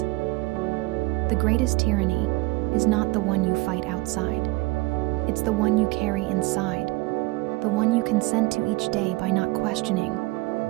The greatest tyranny is not the one you fight outside. It's the one you carry inside. The one you consent to each day by not questioning,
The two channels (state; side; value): quieter; left; 23.3 dB